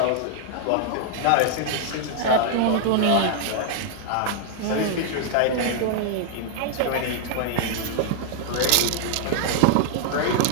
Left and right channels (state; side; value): different; both; correlation 0.00